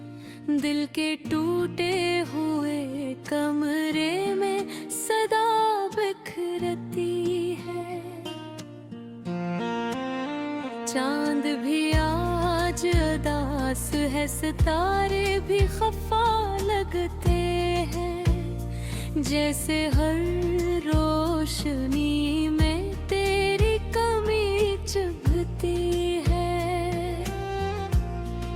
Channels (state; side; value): identical; both; correlation 1.00